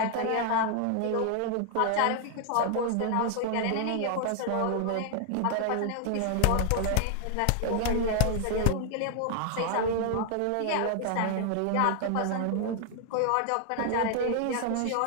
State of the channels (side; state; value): both; different; correlation 0.00